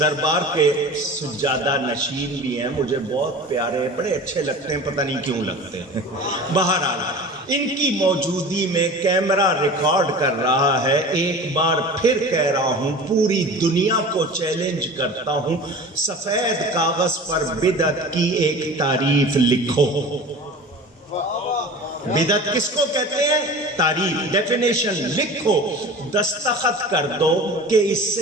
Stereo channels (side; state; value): both; normal; correlation 0.37